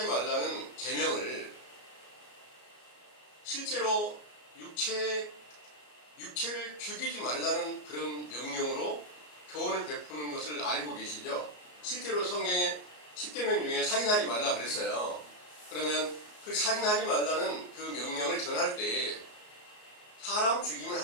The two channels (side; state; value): right; late; 33 ms